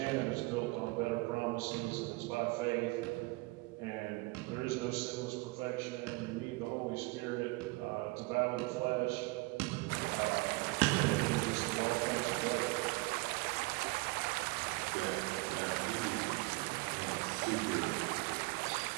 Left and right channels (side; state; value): left; quieter; 25.2 dB